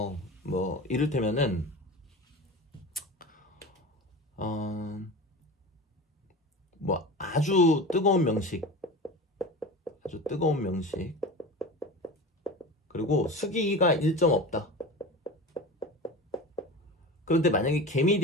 뭐 이를테면은 뭐 아주 뜨거운 명식, 그리고 수기가 일정 없다. 그런데 만약에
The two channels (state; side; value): normal; both; correlation 0.31